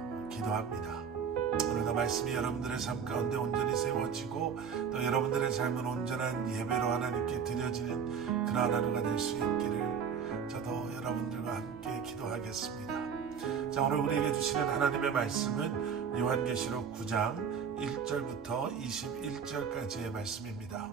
기도합니다. 오늘도 말씀이 여러분들의 삶 가운데 온전히 세워지고 또 여러분들의 삶은 온전한 예배로 하나님께 드려지는 그러한 하루가 될 수 있기를 저도 여러분들과 함께 기도하겠습니다. 자, 오늘 우리에게 주시는 하나님의 말씀은 요한계시록 9장 1절부터 21절까지의 말씀입니다.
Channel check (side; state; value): left; quieter; 6.8 dB